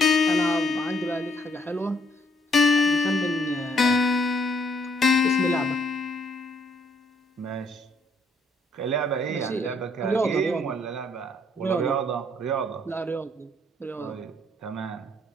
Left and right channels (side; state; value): both; normal; correlation 0.68